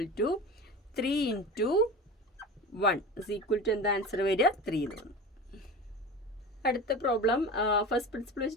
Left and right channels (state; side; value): normal; both; correlation 0.31